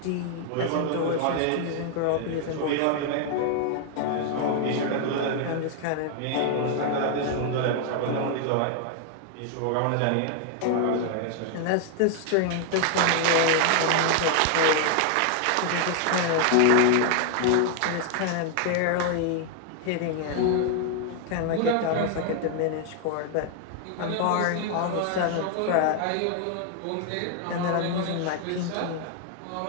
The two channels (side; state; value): both; different; correlation 0.00